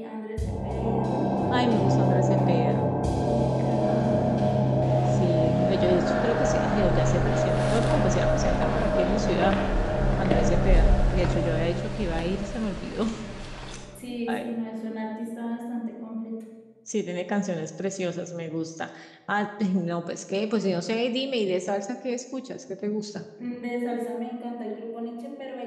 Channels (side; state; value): both; identical; correlation 1.00